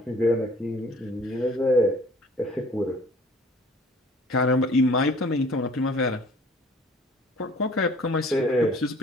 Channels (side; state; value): both; normal; correlation 0.52